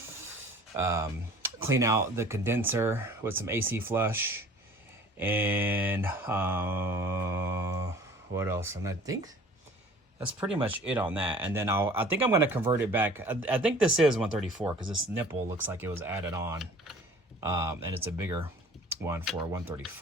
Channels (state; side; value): normal; both; correlation 0.48